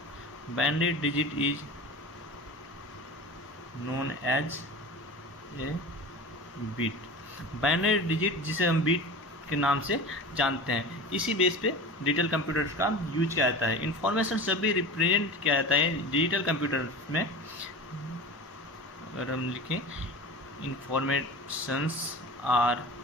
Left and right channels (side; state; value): both; normal; correlation 0.33